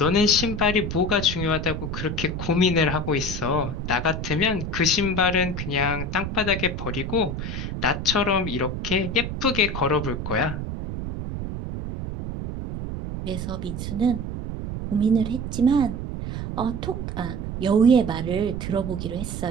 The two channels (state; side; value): noise; right; rumble, 5 dB below the sound